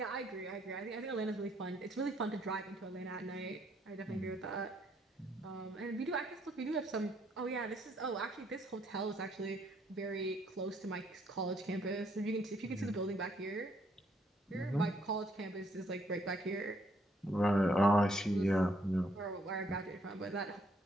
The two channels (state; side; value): normal; both; correlation 0.69